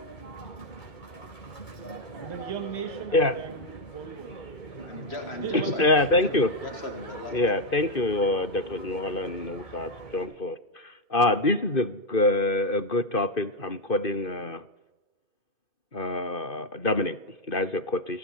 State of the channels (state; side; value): late; right; 2.5 ms